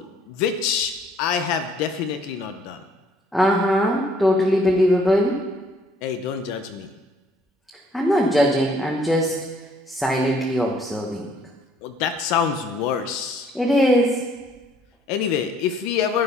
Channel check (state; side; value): normal; both; correlation 0.62